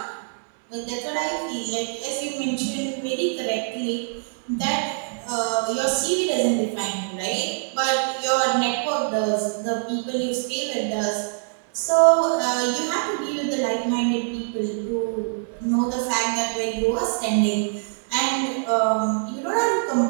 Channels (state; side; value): silent; left; digital silence